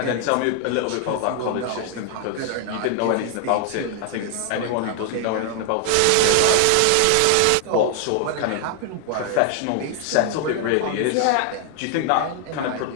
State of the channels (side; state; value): both; different; correlation 0.00